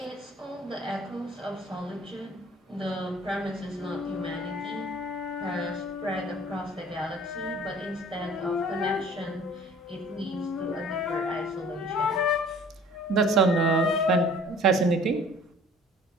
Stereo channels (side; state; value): both; normal; correlation 0.50